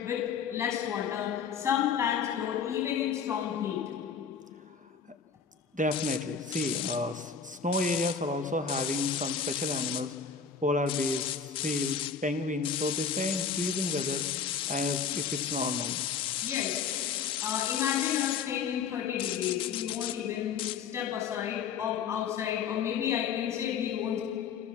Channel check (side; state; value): right; quieter; 6.3 dB